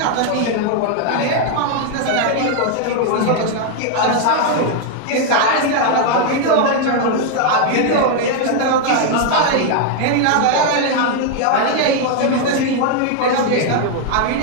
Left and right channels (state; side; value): different; both; correlation 0.00